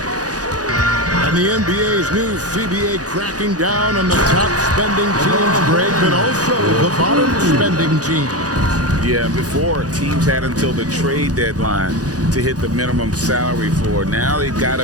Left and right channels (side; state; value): left; late; 0.68 ms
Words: And the NBA's new CBA cracking down on the top spending teams, Greg, but also the bottom spending teams. Yeah, before teams had until the trade deadline to hit the minimum salary floor. Now they've got